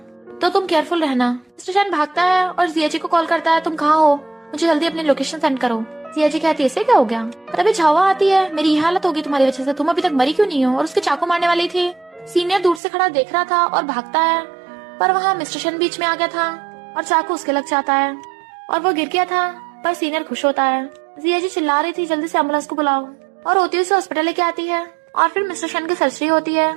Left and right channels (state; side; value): drops out; left; at 12.8 s